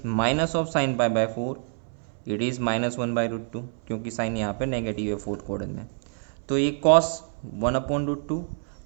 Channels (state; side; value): silent; left; 59 dB below the other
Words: minus of sine pi by 4 it is minus 1/√2 क्योंकि sign यहाँ पे negative है fourth quadrant में। तो ये कॉस 1/√2